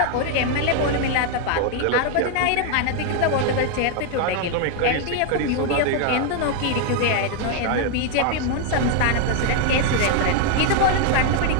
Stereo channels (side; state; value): both; different; correlation 0.00